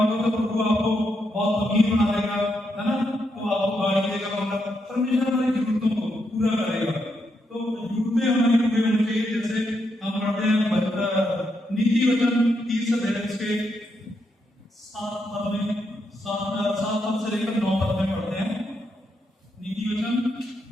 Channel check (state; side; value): normal; both; correlation 0.81